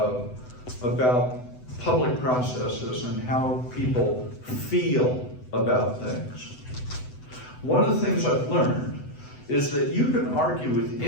about public processes and how people feel about things. One of the things I've learned is that you can argue with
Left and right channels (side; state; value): right; late; 7.9 ms